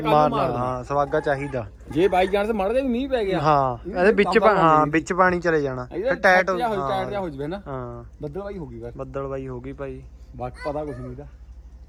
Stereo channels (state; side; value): identical; both; correlation 1.00